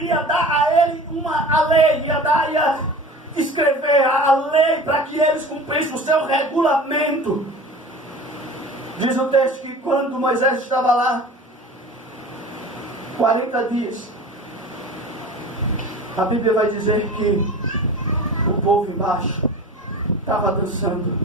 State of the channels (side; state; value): both; normal; correlation 0.37